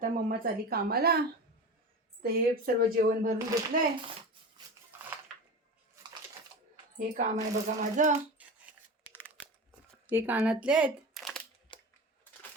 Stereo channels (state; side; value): normal; both; correlation 0.30